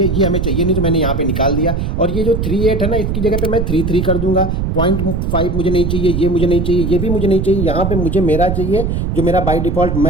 ये हमें चाहिए नहीं, तो मैंने यहाँ पे निकाल दिया। और ये जो 38 है ना, इसकी जगह पे मैं 33 कर दूंगा। 0.5 मुझे नहीं चाहिए, ये मुझे नहीं चाहिए, ये भी मुझे नहीं चाहिए। यहाँ पे मुझे मेरा चाहिए जो मेरा बाय डिफॉल्ट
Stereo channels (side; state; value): right; noise; rumble, 1 dB below the sound